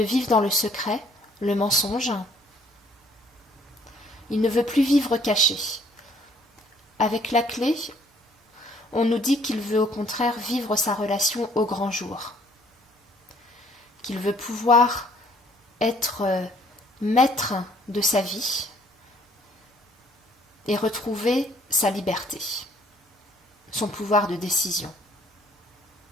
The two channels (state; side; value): normal; both; correlation 0.61